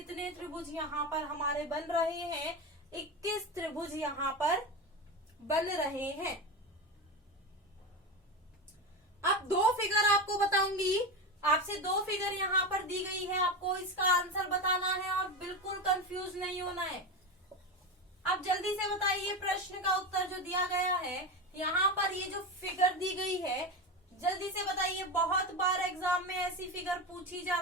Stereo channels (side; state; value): both; normal; correlation 0.20